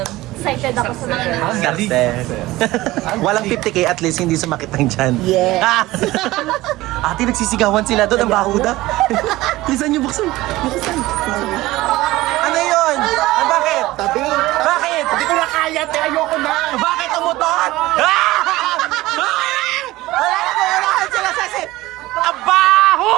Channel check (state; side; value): quieter; left; 18.1 dB